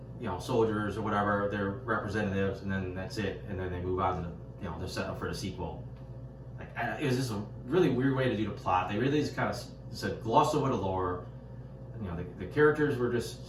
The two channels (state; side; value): identical; both; correlation 1.00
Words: you know, soldiers or whatever, their representatives, and then that's it. And then they move on to, you know, they're setting up for the sequel. Like, it was just a really weird way to do the plot. They really just kind of said gloss over the lore. You know, the characters were